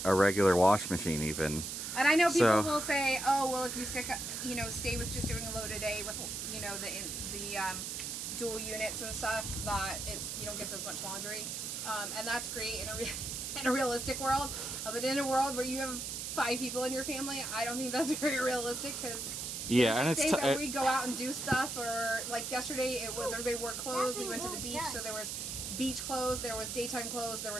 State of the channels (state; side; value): noise; right; hiss, 5 dB below the sound